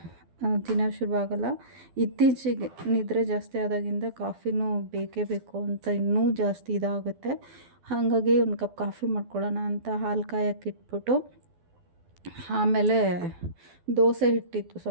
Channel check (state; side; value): late; left; 12 ms